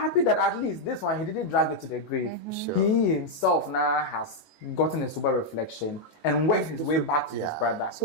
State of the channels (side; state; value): right; late; 19 ms